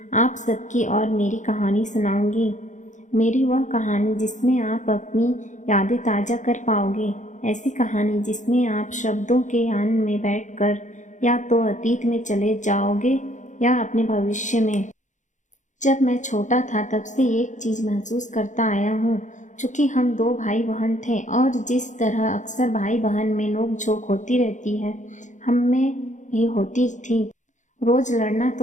आप सबकी और मेरी कहानी सुनाऊंगी। मेरी वह कहानी जिसमें आप अपनी यादें ताज़ा कर पाओगे, ऐसी कहानी जिसमें आप शब्दों के यान में बैठकर या तो अतीत में चले जाओगे या अपने भविष्य में। जब मैं छोटा था तब से एक चीज़ महसूस करता आया हूँ। चूँकि हम दो भाई बहन थे और जिस तरह अक्सर भाई बहन में नोक झोंक होती रहती है, हम में भी होती थी। रोज़ लड़ना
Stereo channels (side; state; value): right; late; 0.36 ms